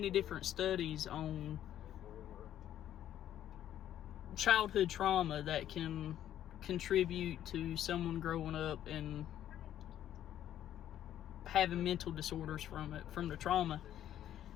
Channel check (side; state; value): right; quieter; 11.4 dB